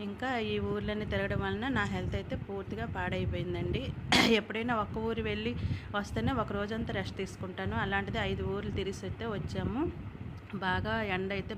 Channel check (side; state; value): both; identical; correlation 1.00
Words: ఇంకా ఈ ఊర్లన్నీ తిరగడం వలన నా హెల్త్ అయితే పూర్తిగా పాడైపోయిందండి. ఎప్పుడైనా ఒక్క ఊరు వెళ్ళి వస్తేనే ఒక రోజంతా రెస్ట్ తీసుకుంటాను. అలాంటిది 5 ఊర్లు తిరిగి అయితే వచ్చాము. బాగా ఎండ అయితే